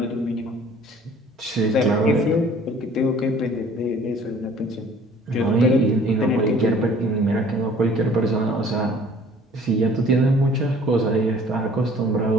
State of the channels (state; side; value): normal; both; correlation 0.53